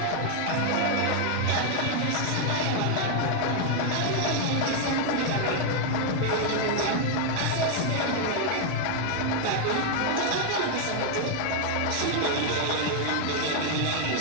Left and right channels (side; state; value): both; different; correlation 0.00